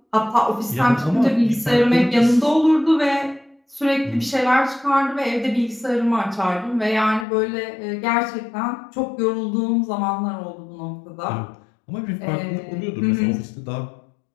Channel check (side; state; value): right; drops out; at 7.2 s